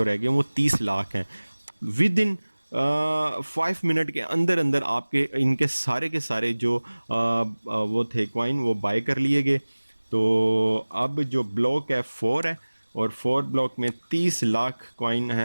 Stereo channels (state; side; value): inverted; both; correlation -1.00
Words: रह गए हैं वो 30 लाख हैं। विद इन 5 मिनट के अंदर अंदर आपके इनके सारे के सारे जो वो थे कॉइन वो बाय कर लिए गए। तो अब जो ब्लॉक है 4 है, और 4 ब्लॉक में 30 लाख कॉइन